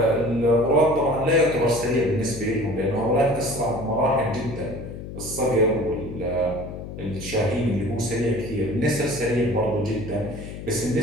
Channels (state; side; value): noise; left; hum, 10 dB below the sound